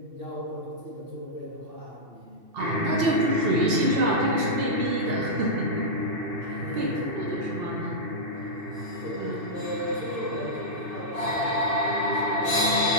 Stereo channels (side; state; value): left; late; 2.7 ms